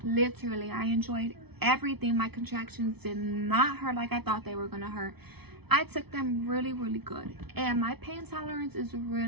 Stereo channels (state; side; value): late; left; 0.98 ms